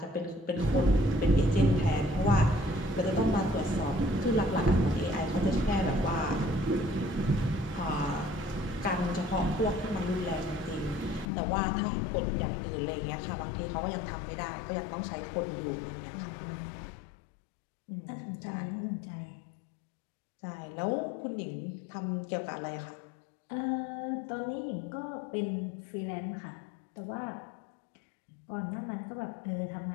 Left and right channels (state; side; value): drops out; right; at 11.2 s